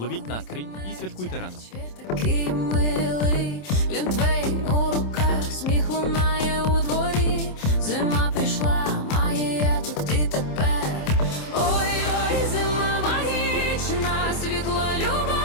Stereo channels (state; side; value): late; right; 27 ms